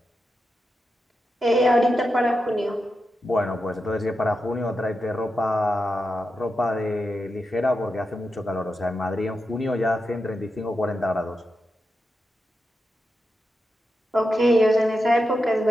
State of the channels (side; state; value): both; normal; correlation 0.88